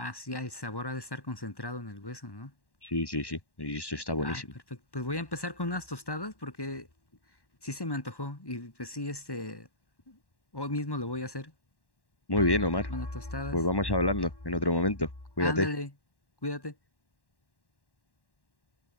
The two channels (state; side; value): late; right; 1.1 ms